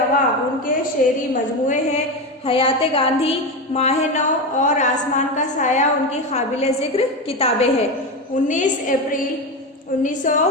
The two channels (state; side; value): normal; both; correlation 0.17